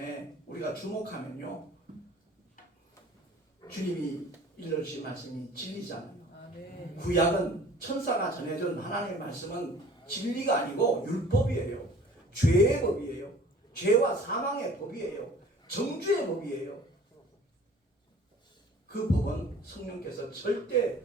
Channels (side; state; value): both; normal; correlation 0.49